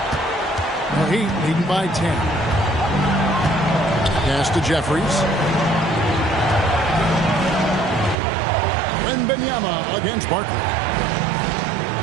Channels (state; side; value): drops out; left; at 8.2 s